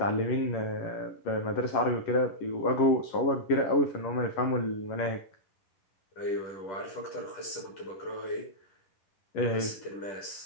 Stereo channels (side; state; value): right; late; 11 ms